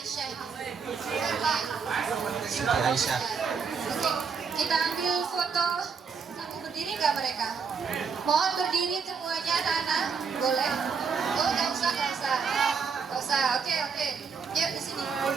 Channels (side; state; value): left; quieter; 5.8 dB